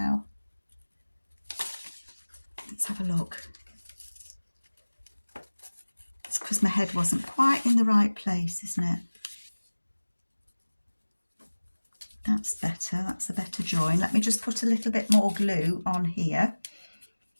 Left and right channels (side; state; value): both; inverted; correlation -1.00